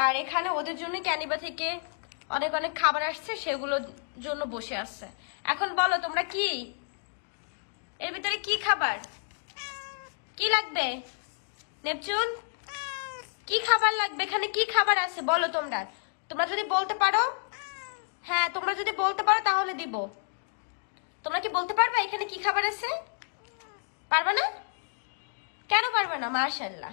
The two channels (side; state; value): right; silent; digital silence